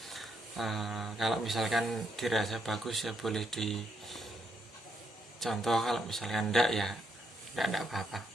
Kalau misalkan dirasa bagus ya boleh dicontoh, kalau misalkan enggak ya enggak apa-apa.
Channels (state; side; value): normal; both; correlation 0.77